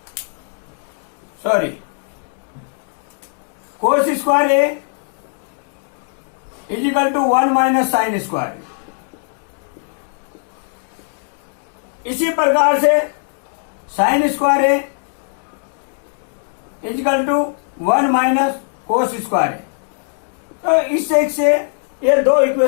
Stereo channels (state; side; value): silent; right; digital silence